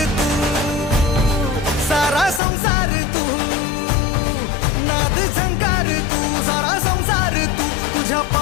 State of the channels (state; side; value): drops out; right; at 2.4 s